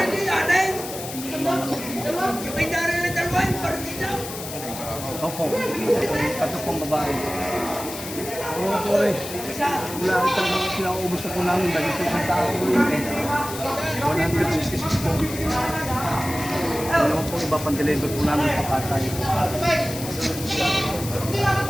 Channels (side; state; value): left; noise; hiss, 10 dB below the sound